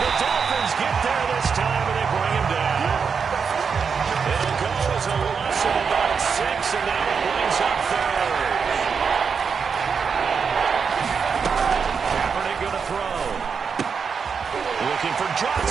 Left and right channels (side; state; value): left; quieter; 6.0 dB